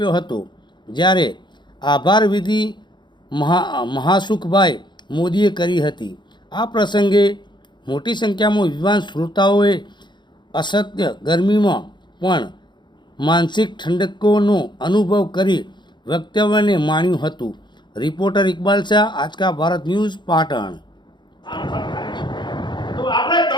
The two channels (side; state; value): right; late; 0.22 ms